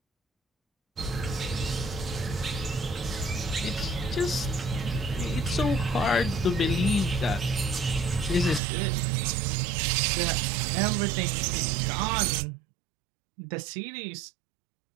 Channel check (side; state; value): left; drops out; at 8.6 s